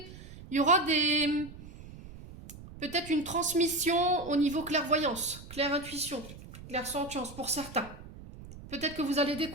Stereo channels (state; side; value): noise; right; rumble, 16 dB below the sound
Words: il y aura peut-être une transmission au niveau clairvoyance, clair-intuition, clair-sentience pour certains. Peut-être que vous allez